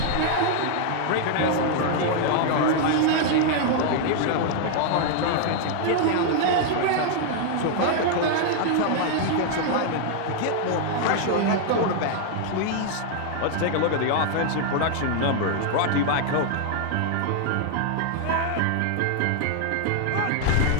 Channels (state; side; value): different; both; correlation 0.00